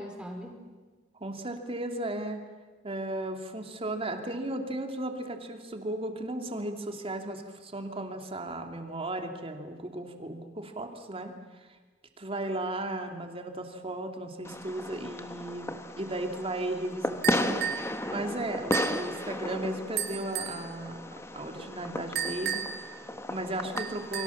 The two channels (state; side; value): normal; both; correlation 0.48